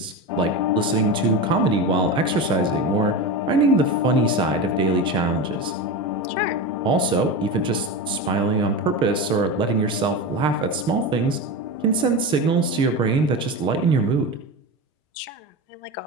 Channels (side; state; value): both; normal; correlation 0.22